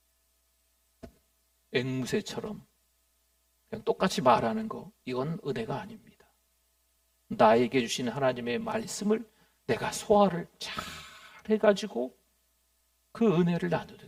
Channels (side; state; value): both; identical; correlation 1.00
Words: 앵무새처럼 그냥 똑같이 말하는 거, 이건 은혜가 아닙니다. 나에게 주신 하나님의 말씀을 내가 소화를 잘 해가지고 그 은혜를